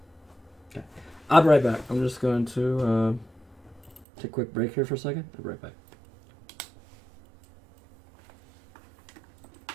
okay. I'll be right back. I'm just going to take a quick break here for a second. I'll be right back.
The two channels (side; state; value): left; drops out; at 4.0 s